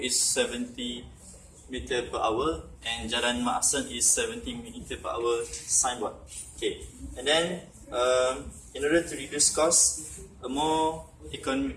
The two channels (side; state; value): both; identical; correlation 1.00